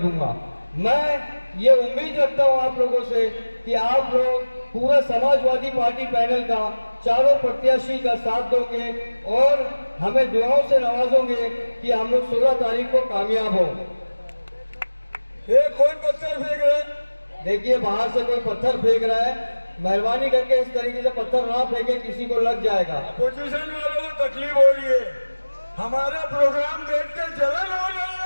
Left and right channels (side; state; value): both; inverted; correlation -1.00